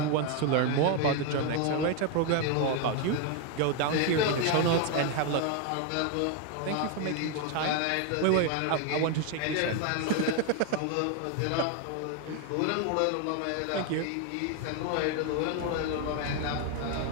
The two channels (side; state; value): both; different; correlation 0.01